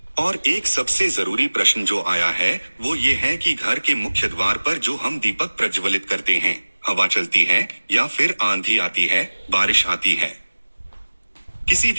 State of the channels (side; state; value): both; inverted; correlation -1.00